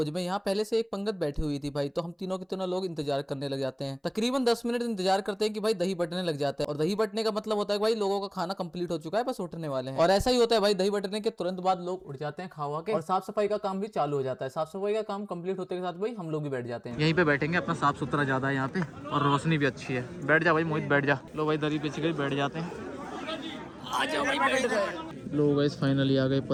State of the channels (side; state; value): both; identical; correlation 1.00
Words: में। यहाँ पहले से एक पंगत बैठी हुई थी भाई, तो हम तीनों के तीनों लोग इंतजार करने लग जाते हैं। तकरीबन 10 मिनट इंतजार करते हैं कि भाई दही बटने लग जाते हैं। और दही बटने का मतलब होता है भाई लोगों का खाना कंप्लीट हो चुका है, बस उठने वाले हैं। और ऐसा ही होता है भाई, दही बटने के तुरंत बाद लोग उठ जाते हैं खावा के, और साफ सफाई का काम भी चालू हो जाता है। साफ सफाई का काम कंप्लीट होते के साथ भाई हम लोग भी बैठ जाते हैं। यहीं पे बैठेंगे, अपना साफ सुथरा ज्यादा है यहाँ पे और रोशनी भी अच्छी है। बैठ जा भाई मोहित, बैठ जा। लो भाई दरी पिछ गई, बैठ जाते हैं। आ जाओ भाई, बैठ गए। लोग गाइस फाइनली आ गए